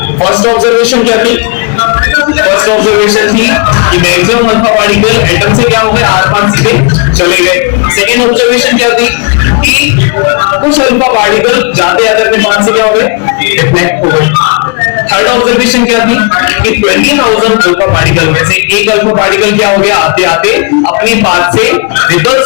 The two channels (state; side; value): quieter; right; 34.9 dB